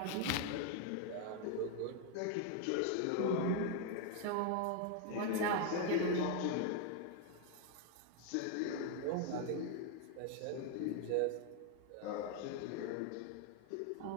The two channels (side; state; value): both; different; correlation 0.01